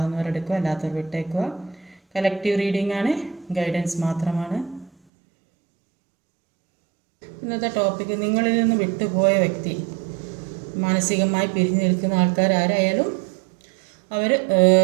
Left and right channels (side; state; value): left; drops out; at 4.9 s